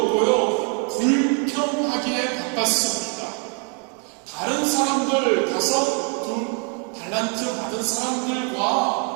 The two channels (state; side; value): quieter; left; 39.5 dB